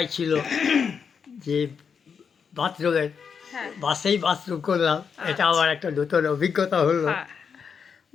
ছিল যে বাথরুমের হ্যাঁ বাসেই বাথরুম করলাম, এটা আমার একটা নতুন অভিজ্ঞতা হলো। হ্যাঁ।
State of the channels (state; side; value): quieter; right; 6.4 dB